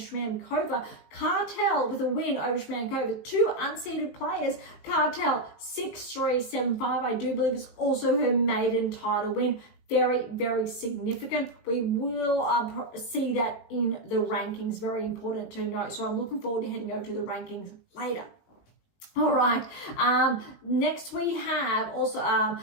Cartel with a win over Shramkova. 2 unseeded players. Cartel 6-3, 7-5. I do believe it's also her maiden title win. Very, very significant. We will see that in the rankings. Very important to note. So I'm looking forward to heading over to the rankings later. All right, next we have also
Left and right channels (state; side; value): late; right; 19 ms